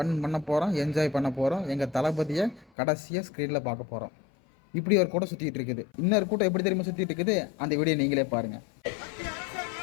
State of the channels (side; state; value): right; drops out; at 2.7 s